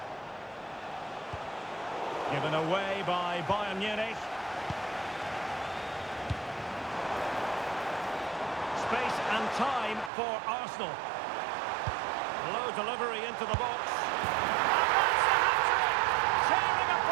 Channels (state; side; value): drops out; left; at 10.1 s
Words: Given away by Bayern Munich. Space and time for Arsenal. Low delivery into the box. And that's the hat-trick! Tearing